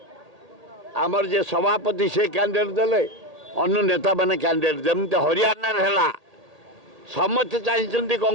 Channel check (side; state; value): left; late; 1.8 ms